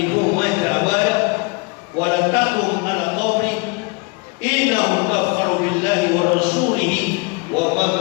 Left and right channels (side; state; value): right; quieter; 28.4 dB